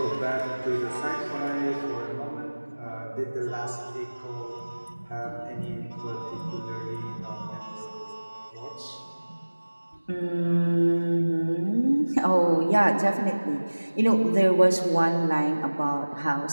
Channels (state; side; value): inverted; both; correlation -1.00